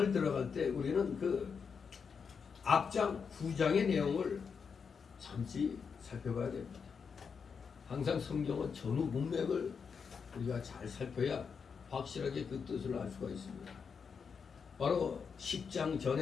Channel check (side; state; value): right; quieter; 6.0 dB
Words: 들어갈 때 우리는 그 앞장 9장의 내용을 잠시 살펴봐야 됩니다. 항상 성경은 전후 문맥을 우리가 잘 살펴야 확실하게 그 뜻을 알 수가 있습니다. 바로 10장